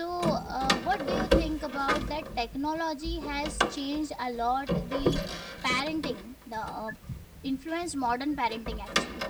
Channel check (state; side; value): identical; both; correlation 1.00